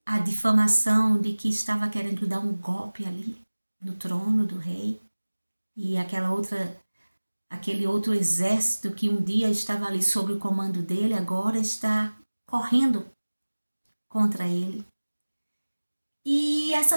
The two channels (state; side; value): inverted; both; correlation -1.00